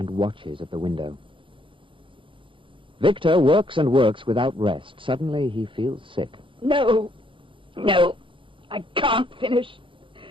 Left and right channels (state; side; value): late; left; 0.25 ms